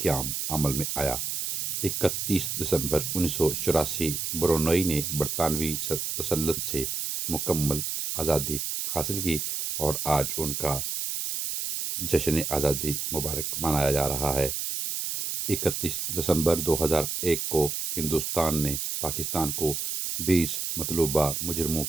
عمل میں آیا۔ 31 دسمبر 1984 برونئی نے برطانوی تسلط سے مکمل آزادی حاصل کی، اور آج ان کا جشن آزادی مبارک منایا جا رہا ہے۔ 31 دسمبر 2001 کو ہندوستان نے پاکستان کو 20 مطلوبہ مجرموں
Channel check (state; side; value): noise; right; hiss, 2 dB below the sound